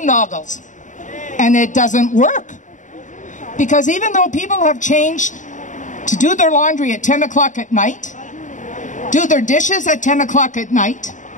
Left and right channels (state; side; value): late; right; 0.36 ms